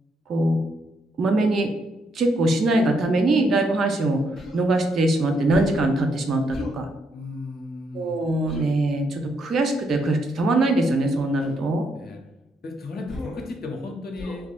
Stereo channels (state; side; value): normal; both; correlation 0.76